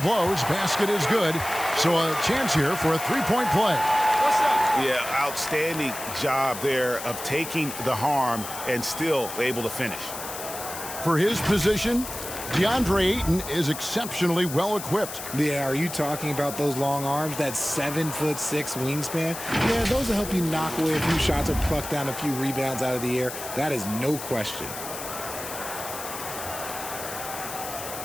Basket is good. So a chance here for a three-point play. Yeah, outstanding job there of taking the harm and still able to finish. For his position, DeAndre Ayton is exceptionally well equipped. Yeah, are you talking about those long arms, that 7'6" wingspan? Yeah, those will help you knock away a few shots or pluck down a few rebounds out of the air. That is no question.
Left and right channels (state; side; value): noise; left; hiss, 9 dB below the sound